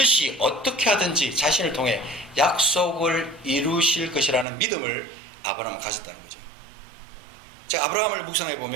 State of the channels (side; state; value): left; drops out; at 4.5 s